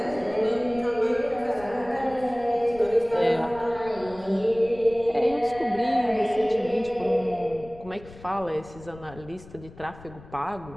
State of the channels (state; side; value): noise; left; rumble, 19 dB below the sound